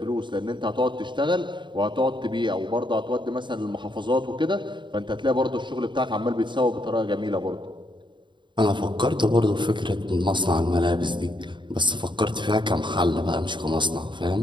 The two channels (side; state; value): left; late; 0.23 ms